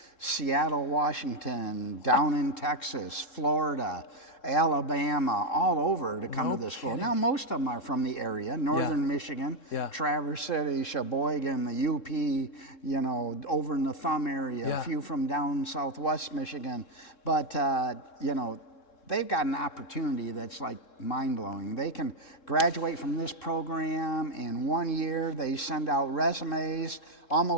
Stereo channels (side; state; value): right; late; 3.7 ms